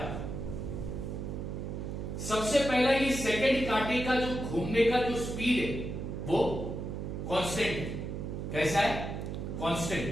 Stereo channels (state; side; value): noise; right; hum, 5 dB below the sound